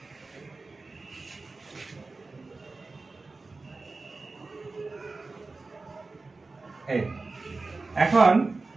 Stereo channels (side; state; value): left; quieter; 3.7 dB